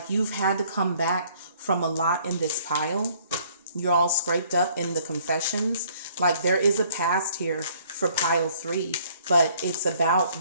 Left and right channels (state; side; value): inverted; both; correlation -0.60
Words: you've had to come back from a lot in this pile. You're all scraped up in the confessions. Like there is a past here for pile 3, but it's about